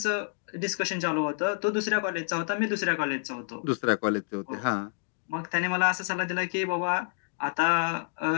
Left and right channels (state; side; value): silent; right; digital silence